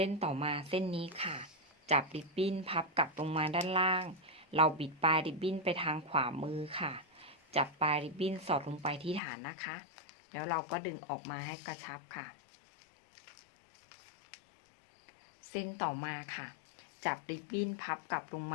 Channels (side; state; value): right; drops out; at 9.2 s